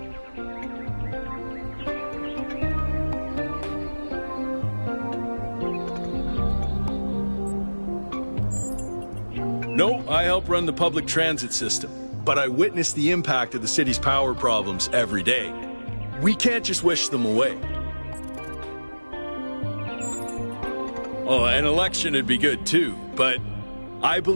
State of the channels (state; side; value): inverted; both; correlation -1.00